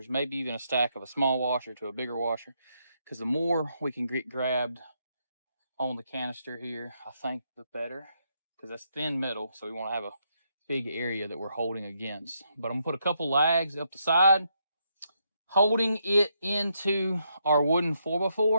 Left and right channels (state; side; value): inverted; both; correlation -0.78